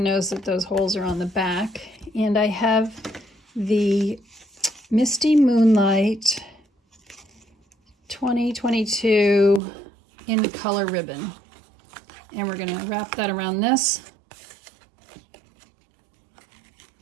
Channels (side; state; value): left; drops out; at 9.6 s